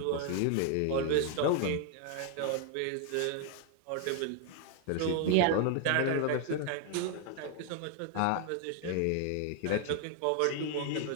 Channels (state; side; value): different; both; correlation 0.00